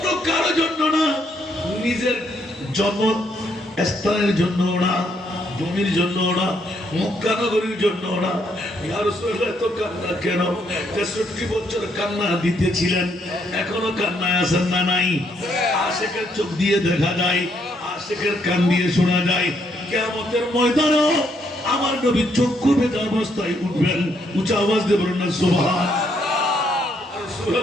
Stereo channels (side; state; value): both; normal; correlation 0.73